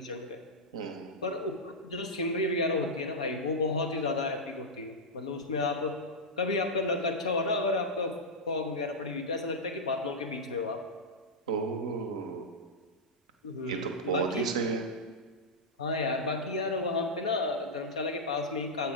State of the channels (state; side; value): normal; both; correlation -0.08